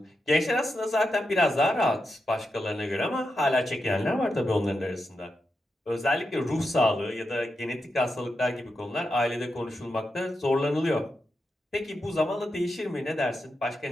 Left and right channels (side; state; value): both; normal; correlation 0.87